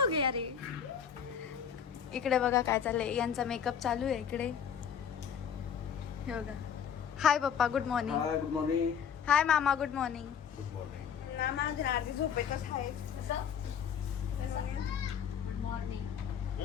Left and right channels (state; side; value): quieter; right; 7.8 dB